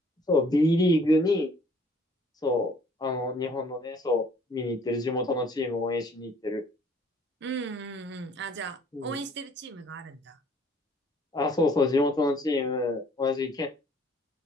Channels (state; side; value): normal; both; correlation 0.58